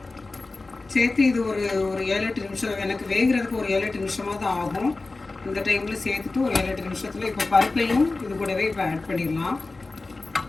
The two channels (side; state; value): right; quieter; 3.5 dB